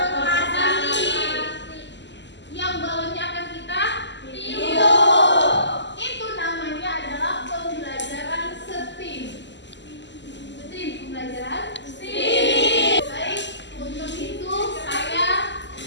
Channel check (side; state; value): right; late; 0.52 ms